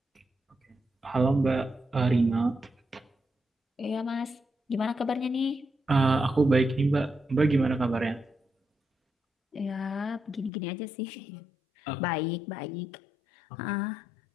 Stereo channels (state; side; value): drops out; right; at 10.5 s